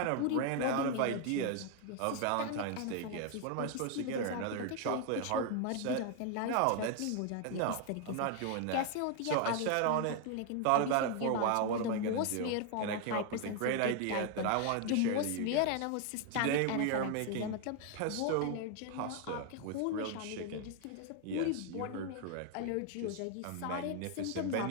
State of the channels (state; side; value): different; both; correlation 0.00